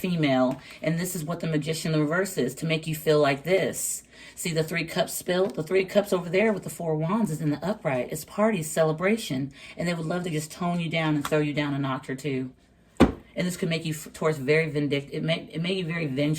and this is what the Magician in reverse is, to make you feel like this. See the Three Cups spilled? The Three Cups over there with the Four of Wands is in the upright. It's party, celebration, and they would love to just tone you down and throw you down a notch or two. And this could make you, towards, very vindictive. It made you very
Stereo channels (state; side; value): identical; both; correlation 1.00